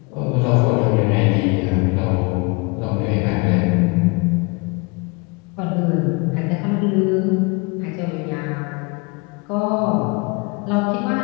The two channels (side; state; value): right; quieter; 29.0 dB